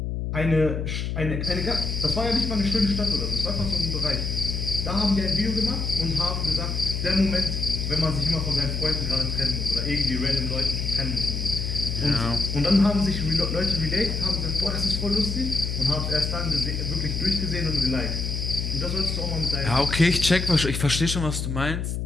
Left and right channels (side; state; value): left; noise; hum, 2 dB below the sound